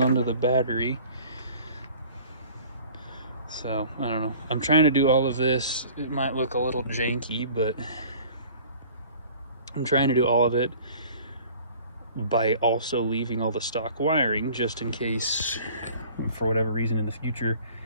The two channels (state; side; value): inverted; both; correlation -0.48